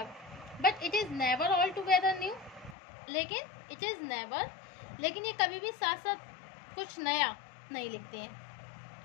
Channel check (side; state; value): right; drops out; at 2.8 s